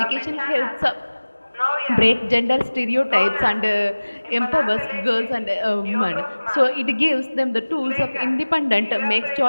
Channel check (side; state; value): both; inverted; correlation -1.00